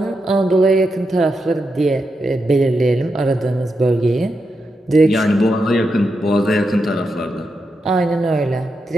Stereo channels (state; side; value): normal; both; correlation 0.86